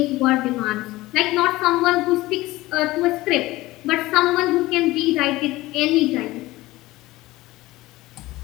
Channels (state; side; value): quieter; right; 18.6 dB